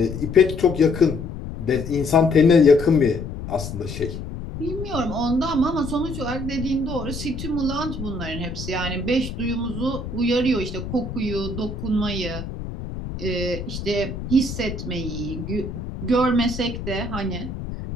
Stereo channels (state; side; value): noise; left; rumble, 8 dB below the sound